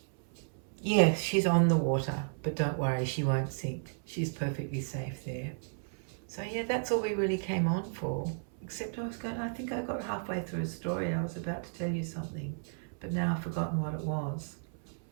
Yes, she's on the water, but don't worry, she won't sink. She's perfectly safe there. So yeah, that's all we really came on for. Except I think I got halfway through a story. I was about to tell you something, but now I've forgotten what it was.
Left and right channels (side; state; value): left; silent; 56 dB below the other